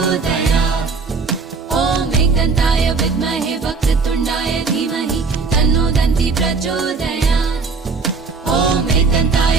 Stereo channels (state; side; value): quieter; left; 4.6 dB